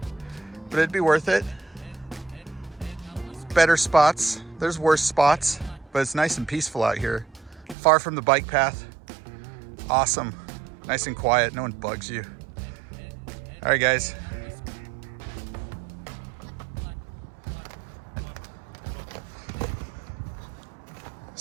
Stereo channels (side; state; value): left; drops out; at 7.8 s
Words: but it'd be worth it. Better spots, there's worse spots, but it's nice and peaceful out here. Far from the bike path. Awesome, nice and quiet, no one bugs you. All right, guys.